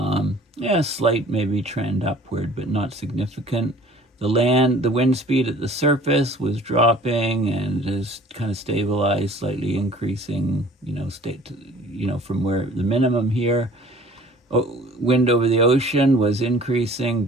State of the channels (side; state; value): both; normal; correlation 0.50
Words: Slight maybe trend upward, but not significant. The wind speed at the surface was dropping and has kind of stabilized, slightly increasing, from where the minimum here. Wind over the ocean was increasing,